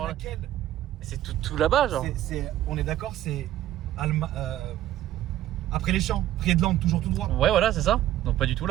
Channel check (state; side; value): quieter; left; 13.3 dB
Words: laquelle? C'est tout là-bas, genre. On est d'accord, c'est. Après les champs, Friedland, toujours tout droit. Ouais, voilà, c'est ça. Donc pas du tout